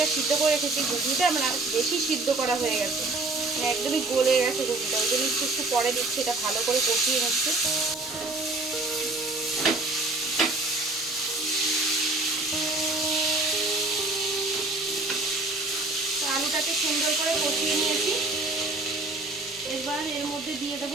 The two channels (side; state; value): left; quieter; 3.2 dB